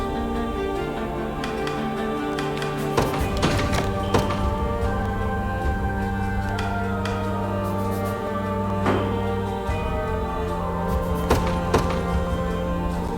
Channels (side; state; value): both; identical; correlation 1.00